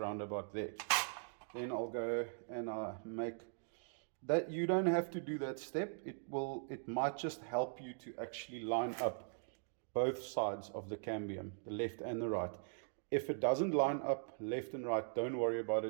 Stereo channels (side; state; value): left; silent; digital silence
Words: about there. Then I'll go and I make that. You don't have to do that step. It might just help you to actually line up both sides of the cambium, the left and the right. If it doesn't line up left and right, don't worry about